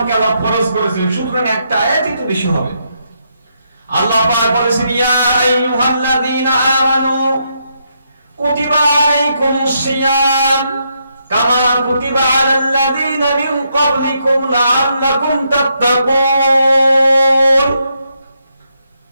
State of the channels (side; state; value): both; inverted; correlation -0.78